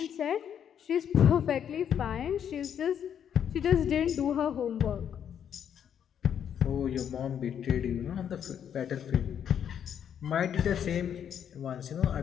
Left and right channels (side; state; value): right; quieter; 8.8 dB